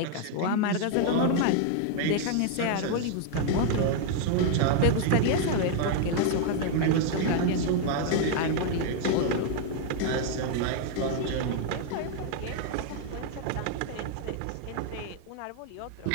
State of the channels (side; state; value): both; different; correlation 0.00